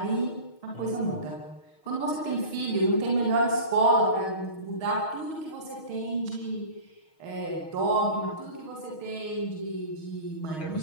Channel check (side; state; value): right; late; 6.4 ms